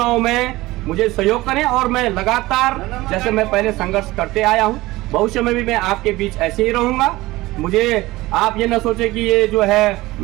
में मुझे सहयोग करें और मैं लगातार, जैसे मैं पहले संघर्ष करते आया हूं, भविष्य में भी मैं आपके बीच ऐसे ही रहूंगा। मुझे आप ये ना सोचे कि ये जो है,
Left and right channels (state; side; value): quieter; left; 19.0 dB